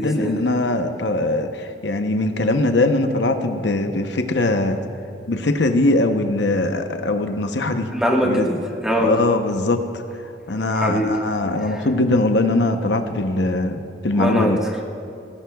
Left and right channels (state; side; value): normal; both; correlation 0.43